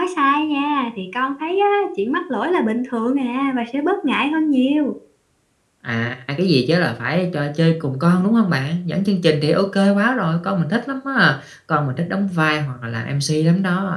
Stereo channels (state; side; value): identical; both; correlation 1.00